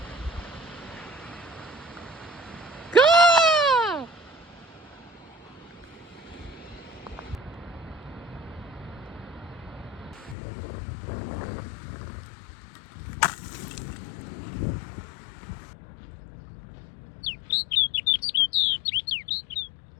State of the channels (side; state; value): right; drops out; at 10.4 s